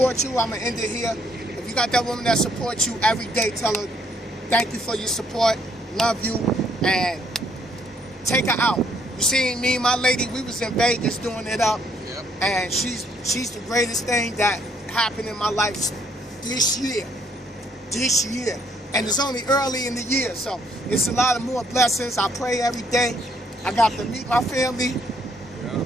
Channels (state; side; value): normal; both; correlation 0.68